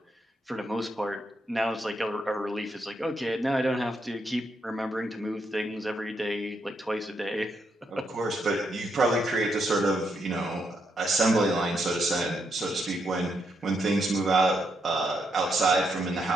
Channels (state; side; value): normal; both; correlation 0.79